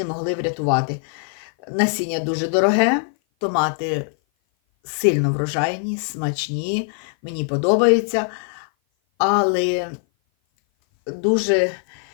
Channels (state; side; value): silent; right; 56 dB below the other